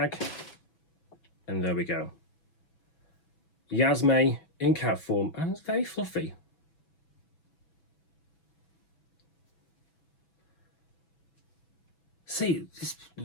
And there we go. Yasme in cat form, and it's very fluffy. See, this,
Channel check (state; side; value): late; right; 6.1 ms